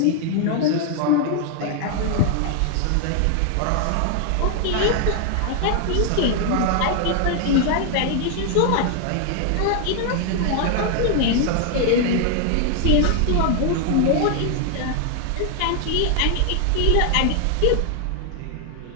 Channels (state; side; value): different; both; correlation 0.00